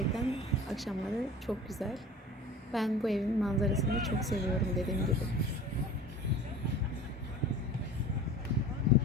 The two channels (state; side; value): normal; both; correlation 0.39